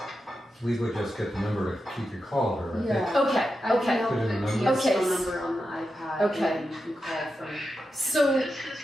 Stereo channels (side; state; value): both; normal; correlation 0.89